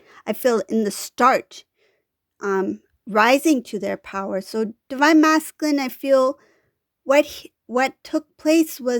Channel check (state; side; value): identical; both; correlation 1.00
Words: feel, in the start, rising to their power. So divine masculine, I feel what took place